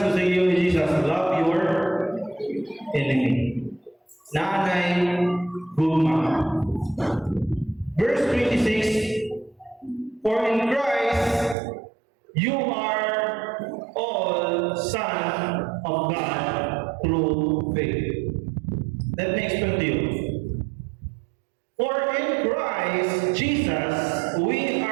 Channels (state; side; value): drops out; left; at 11.6 s